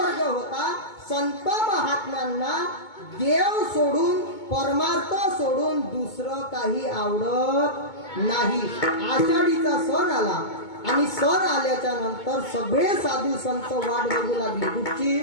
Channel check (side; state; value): right; late; 2.2 ms